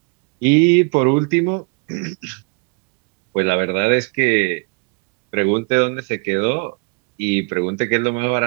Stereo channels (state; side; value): quieter; left; 34.8 dB